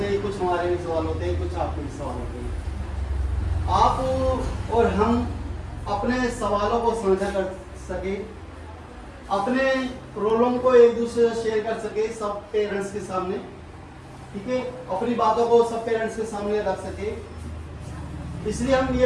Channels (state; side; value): identical; both; correlation 1.00